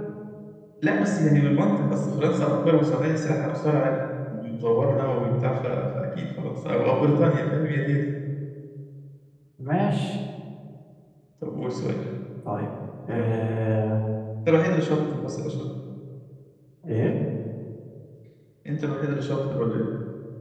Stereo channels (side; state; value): both; identical; correlation 1.00